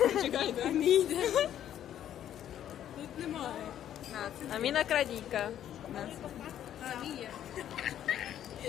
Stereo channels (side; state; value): right; quieter; 10.8 dB